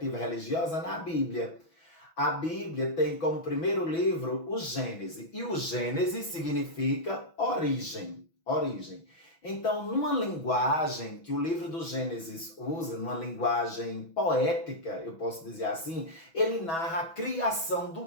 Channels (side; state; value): right; late; 6.1 ms